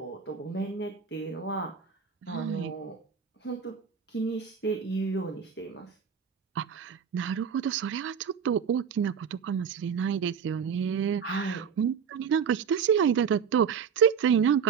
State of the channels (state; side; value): quieter; left; 7.0 dB